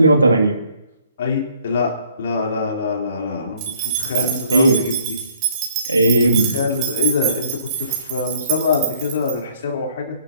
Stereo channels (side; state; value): both; inverted; correlation -0.61